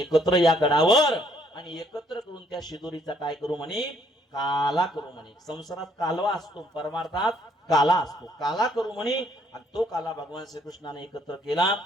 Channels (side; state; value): both; normal; correlation 0.66